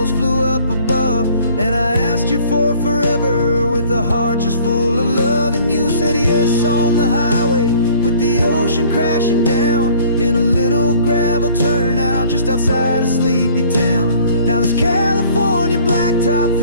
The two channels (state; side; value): inverted; both; correlation -0.54